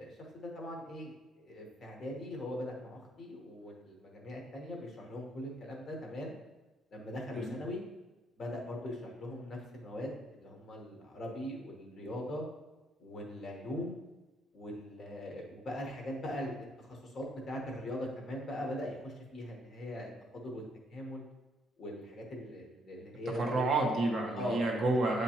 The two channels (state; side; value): normal; both; correlation 0.71